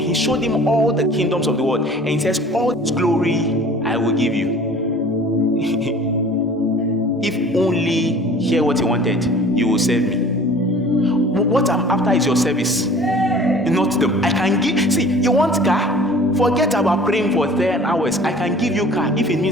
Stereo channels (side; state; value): both; normal; correlation 0.46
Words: he showed him all the kingdoms of the world. And he says, all this glory I will give you. If only hear what he wanted, you will serve me. What I'm after is your service, not them. I can give. See, you want car? Forget about praying for 10 hours. I can give you car if it